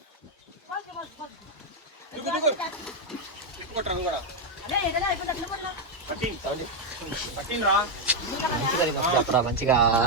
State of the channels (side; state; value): both; normal; correlation 0.01